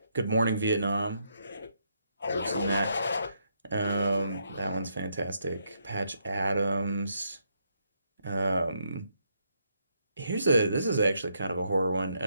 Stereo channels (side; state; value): both; inverted; correlation -0.77